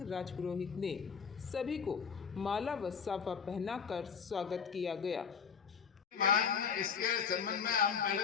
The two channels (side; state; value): right; quieter; 6.5 dB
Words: राजपुरोहित ने सभी को माला व साफा पहनाकर स्वागत किया गया। इसके संबंध में हम